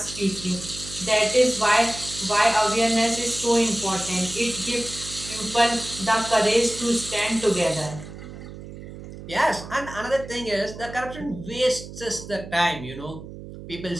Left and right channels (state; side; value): noise; right; hum, 13 dB below the sound